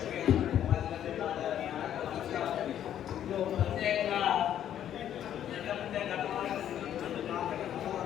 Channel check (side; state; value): right; quieter; 10.6 dB